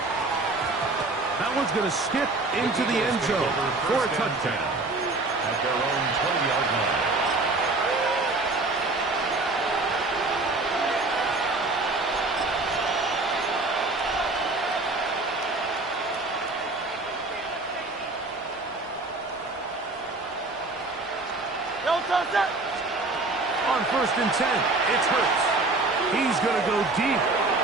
That one's going to skip into the end zone for a touchdown. At their own 20-yard line. On 1st and 10, it's Hurts. He's going to go deep,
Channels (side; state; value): left; quieter; 3.2 dB